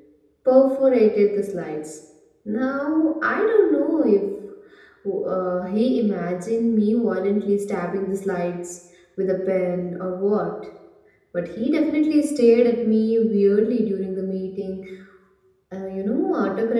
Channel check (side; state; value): both; identical; correlation 1.00